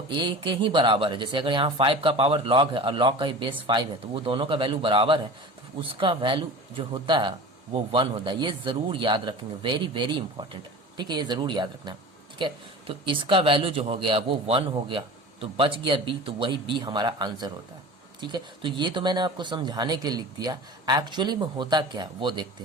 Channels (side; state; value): both; normal; correlation 0.36